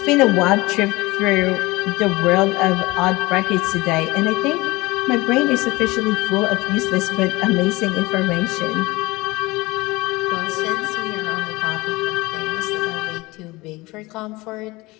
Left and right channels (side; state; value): right; quieter; 21.8 dB